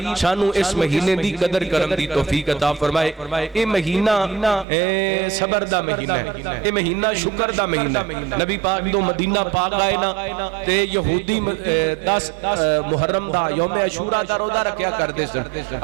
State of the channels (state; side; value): drops out; left; at 4.7 s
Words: شانو اس مہینے دی قدر کرم دی توفیق عطا فرمائے اے مہینہ صبر دا مہینہ ہے اے مہینہ شکر دا مہینہ ہے نبی پاک تو مدینہ پاک آئے نا تے یہودی 10 محرم دا یوم عاشوراء دا روزہ رکھیا کرتے سن